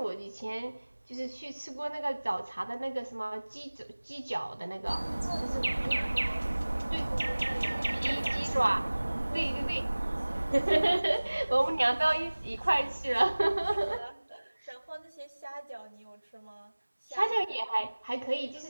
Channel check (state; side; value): inverted; both; correlation -1.00